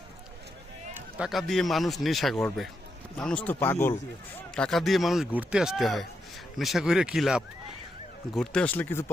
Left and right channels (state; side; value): normal; both; correlation 0.83